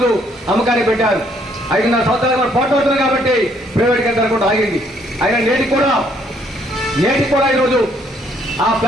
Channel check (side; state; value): both; normal; correlation 0.67